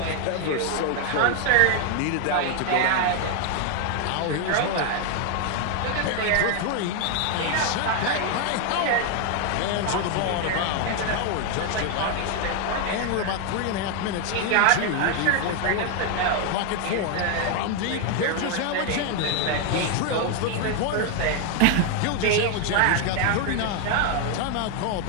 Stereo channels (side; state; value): both; different; correlation 0.01